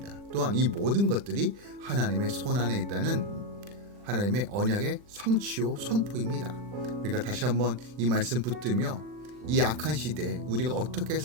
또한 이 모든 것들이 하나님의 손안에 있다는 하나님의 언약의 성취요 선포입니다. 우리가 다시 한번 이 말씀 붙들며 이 악한 시대에 우리가 어떻게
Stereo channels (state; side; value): late; left; 40 ms